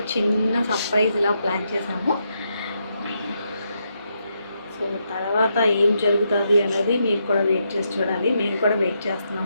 చిన్న సర్ప్రైజ్ ఇలా ప్లాన్ చేసాము. సో తర్వాత ఏం జరుగుతుంది అనేది మీరు కూడా వెయిట్ చేసి చూడాలి. మేము కూడా వెయిట్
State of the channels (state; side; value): inverted; both; correlation -0.81